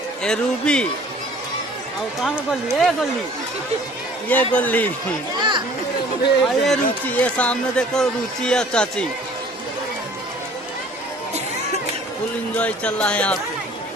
ये रूबी और कहाँ में गोल्ली? ये गोल्ली और ये रुचि। ये सामने देखो रुचि और चाची। फुल एंजॉय चल रहा है यहाँ पे।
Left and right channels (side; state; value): both; normal; correlation 0.51